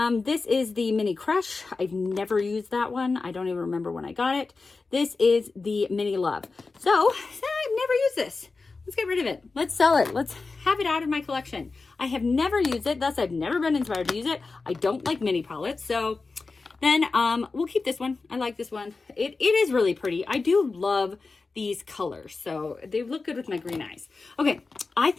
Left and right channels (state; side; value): quieter; right; 4.0 dB